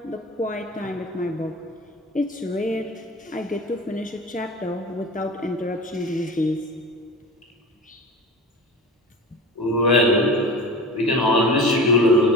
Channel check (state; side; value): normal; both; correlation 0.33